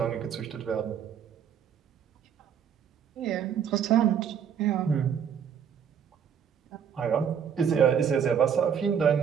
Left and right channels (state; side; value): quieter; left; 8.0 dB